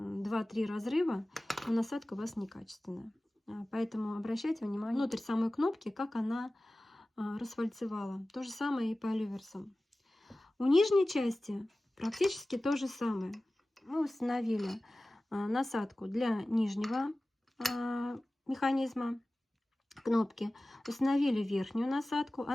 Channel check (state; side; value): normal; both; correlation 0.97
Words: разрыва, то насадка у вас некачественная. Поэтому обращайте внимание внутрь самой кнопки, как она расфальцевала. То же самое и по люверсам. У нижней части практически то же самое. Мы установили насадку для нижнего механизма кнопки, установили верхнюю насадку.